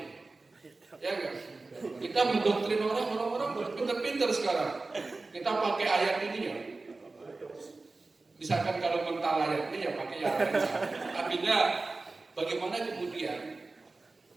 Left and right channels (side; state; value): left; quieter; 3.5 dB